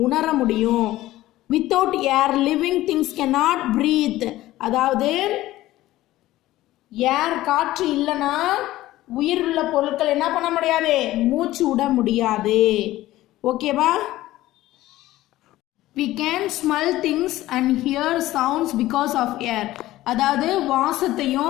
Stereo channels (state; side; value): quieter; right; 16.0 dB